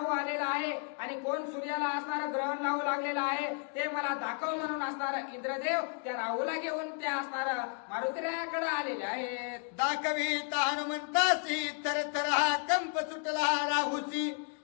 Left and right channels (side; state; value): right; quieter; 38.5 dB